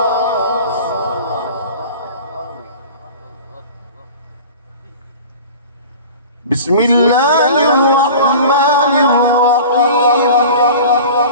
بسم الله الرحمن الرحيم.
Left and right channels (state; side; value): inverted; both; correlation -0.39